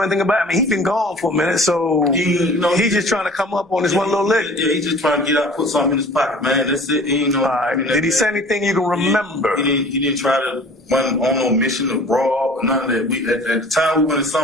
anything about it? I mean, he's been gone for a minute, so he's just trying to come up on this one little lick. Yeah, he's just trying to get out, put something in his pocket, man. That's it. He ain't know. All right. Did he say anything you can remember? He didn't try to run on no mission to rob or none of that. At the time we went in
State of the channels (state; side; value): normal; both; correlation 0.46